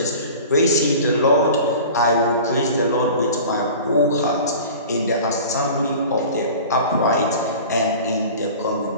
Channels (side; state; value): both; inverted; correlation -0.39